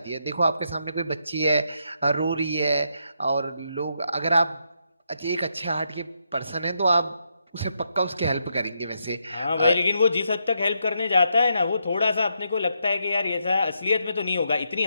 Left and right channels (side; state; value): both; inverted; correlation -0.80